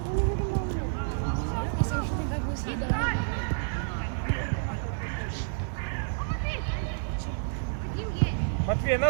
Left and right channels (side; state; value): left; silent; digital silence